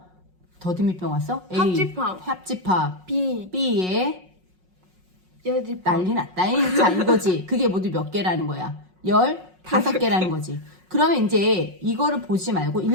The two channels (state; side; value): late; left; 5.5 ms